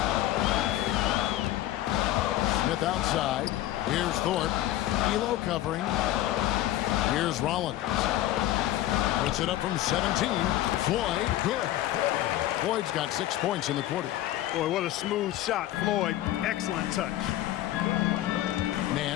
Smith outside. Here's Thorpe. Elo covering. Here's Rollins. Puts it up from 17. Floyd, good. Floyd's got 6 points in the quarter. Boy, what a smooth shot, Floyd. Excellent touch.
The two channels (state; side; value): quieter; right; 14.2 dB